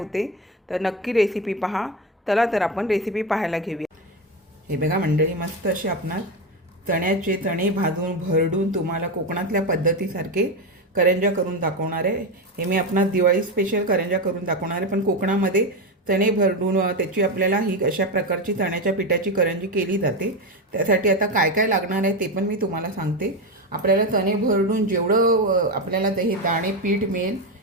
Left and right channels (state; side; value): normal; both; correlation 0.14